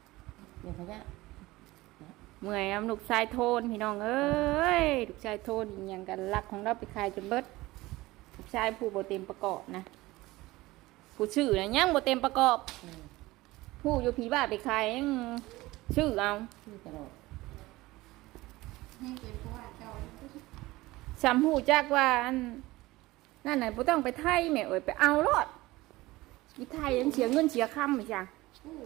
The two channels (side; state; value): left; quieter; 19.3 dB